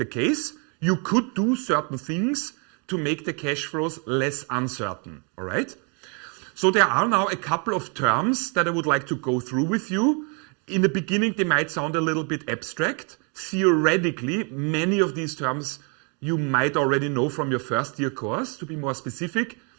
case. You could do certain things to make the cash flows less uncertain, all right? So there are now a couple of terms that I would like to go through with you. In the beginning, they might sound a little bit abstract. Theoretically, many of these terms you might already know from your first year course, to be more specific,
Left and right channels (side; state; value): left; quieter; 36.2 dB